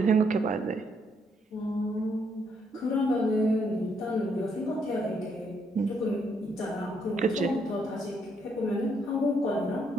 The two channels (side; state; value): both; normal; correlation 0.73